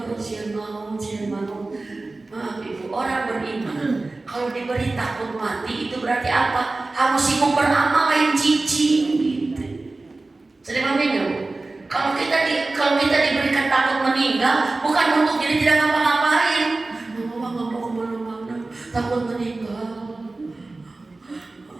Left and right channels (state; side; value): quieter; left; 3.3 dB